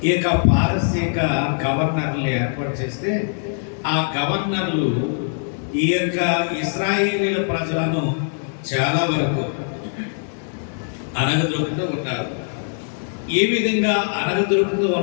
ఈ యొక్క పారసీక గవర్నర్లు ఏర్పాటు చేస్తే, ఆ గవర్నర్లు ఈ యొక్క ఇశ్రాయేలీల ప్రజలను చాలా వరకు అనగదొక్కుతూ ఉన్నారు. ఈ విధంగా అనగదొరుకుతూ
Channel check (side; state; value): right; silent; digital silence